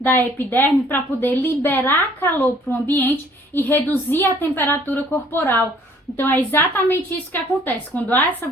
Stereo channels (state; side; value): normal; both; correlation 0.58